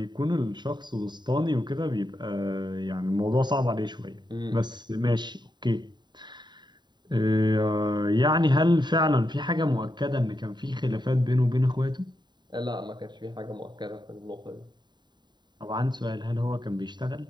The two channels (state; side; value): late; left; 0.21 ms